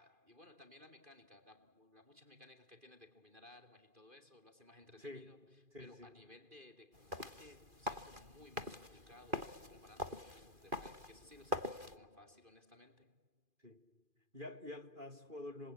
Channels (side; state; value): left; late; 2.4 ms